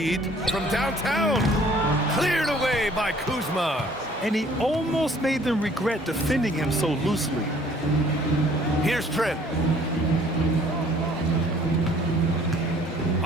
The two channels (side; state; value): both; normal; correlation 0.56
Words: from downtown. Cleared away by Kuzma. And he almost made them regret defending him so loosely. Here's Trent.